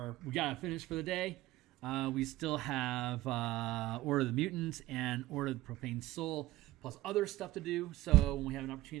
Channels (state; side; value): quieter; left; 17.2 dB